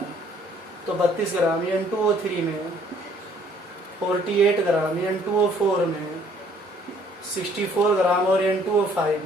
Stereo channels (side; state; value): both; normal; correlation 0.60